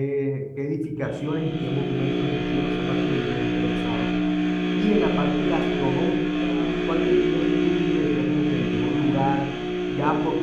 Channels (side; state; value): both; identical; correlation 1.00